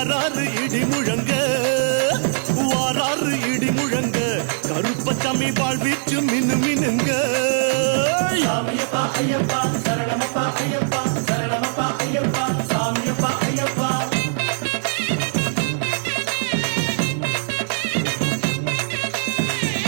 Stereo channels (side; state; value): left; silent; 65 dB below the other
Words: இடி முழங்க வாராரு இடி முழங்க கருப்பசாமி வாழ்வீச்சு மினு மினுங்க சாமியப்பா ஐயப்பா சரணமப்பா ஐயப்பா சரணமப்பா ஐயப்பா சாமியப்பா ஐயப்பா